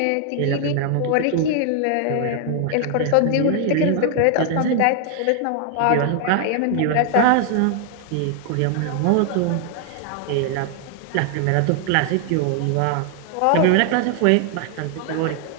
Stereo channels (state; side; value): different; both; correlation 0.00